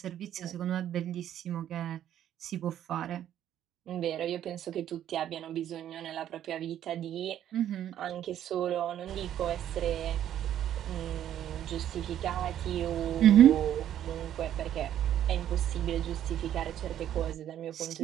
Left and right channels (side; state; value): left; quieter; 11.0 dB